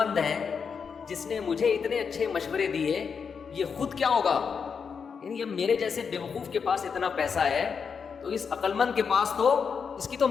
ہے, جس نے مجھے اتنے اچھے مشورے دیے یہ خود کیا ہوگا؟ یعنی اب میرے جیسے بیوقوف کے پاس اتنا پیسہ ہے تو اس عقل مند کے پاس تو اس کی تو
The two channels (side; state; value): right; quieter; 6.1 dB